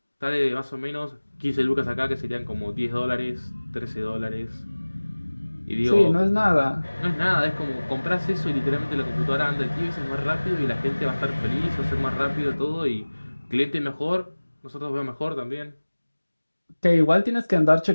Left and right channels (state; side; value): inverted; both; correlation -1.00